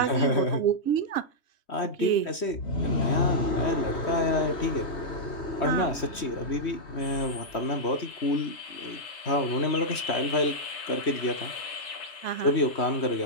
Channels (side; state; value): right; late; 3.1 ms